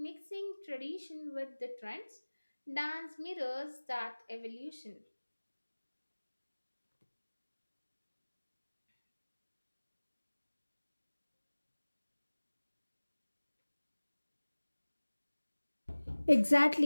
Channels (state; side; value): inverted; both; correlation -1.00